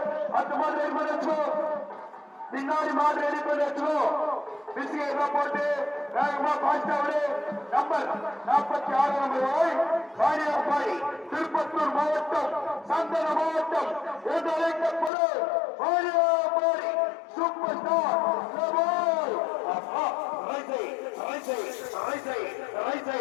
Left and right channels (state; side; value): drops out; right; at 15.1 s